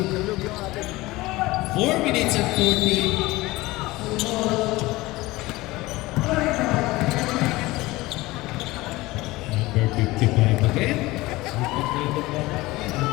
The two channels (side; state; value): right; quieter; 20.0 dB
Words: 4 minutes and 40. Number 55 again.